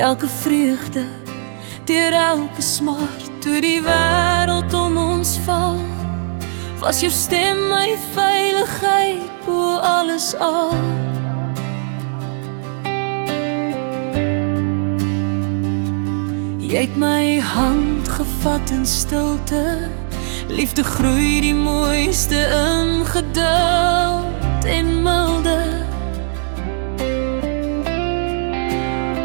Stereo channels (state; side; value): silent; left; digital silence